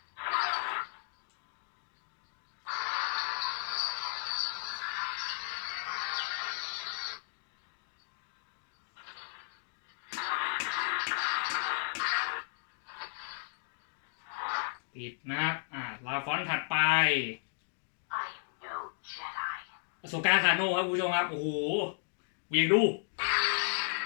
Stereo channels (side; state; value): right; silent; digital silence